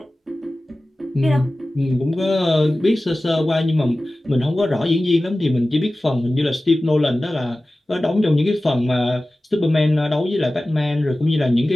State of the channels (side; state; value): both; normal; correlation 0.96